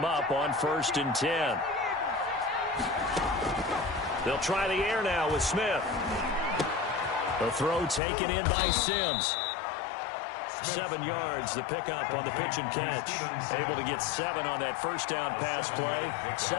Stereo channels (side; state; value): right; drops out; at 8.0 s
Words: up on 1st and 10. They'll try the air now with Smith. The throw taken in by Sims. 7 yards, the pickup on the pitch and catch. Able to get 7 on that first down pass play.